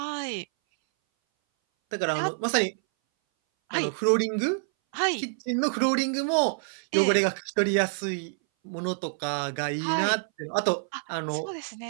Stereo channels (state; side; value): silent; left; 59 dB below the other